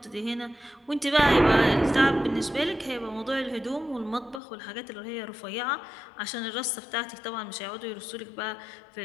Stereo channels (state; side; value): drops out; right; at 4.4 s